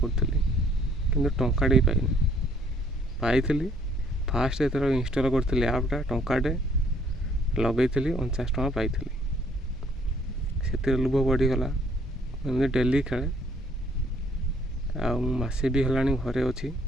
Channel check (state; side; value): normal; both; correlation 0.63